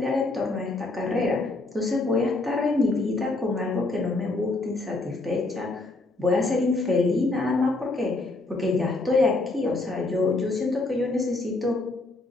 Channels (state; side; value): quieter; right; 3.1 dB